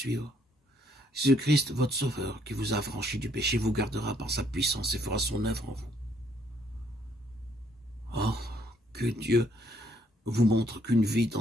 Jésus-Christ, votre Sauveur, qui vous a affranchi du péché, vous gardera par sa puissance et fera son œuvre en vous. Oh, que Dieu vous montre qu'une vie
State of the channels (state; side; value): normal; both; correlation 0.68